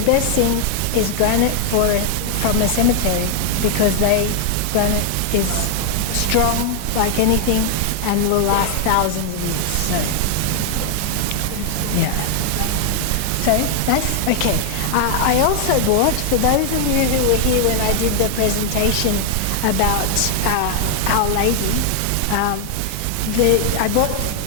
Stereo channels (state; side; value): different; both; correlation 0.00